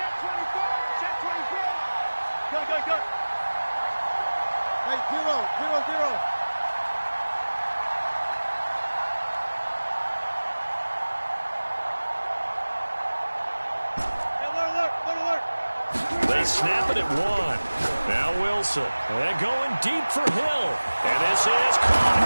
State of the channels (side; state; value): both; inverted; correlation -1.00